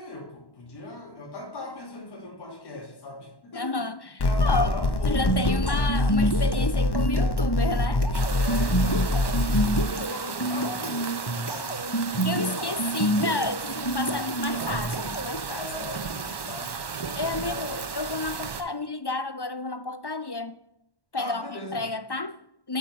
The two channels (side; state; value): right; late; 1.1 ms